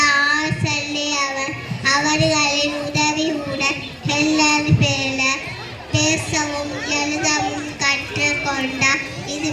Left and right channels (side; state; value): both; identical; correlation 1.00